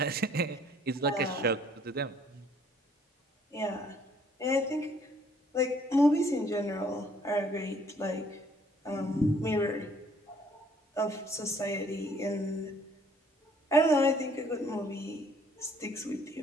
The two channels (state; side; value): normal; both; correlation 0.61